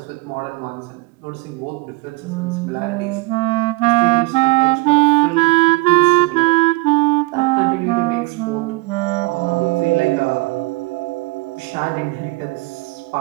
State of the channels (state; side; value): quieter; left; 23.6 dB